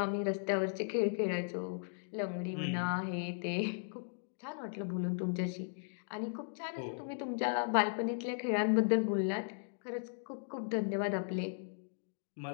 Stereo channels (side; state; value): right; silent; digital silence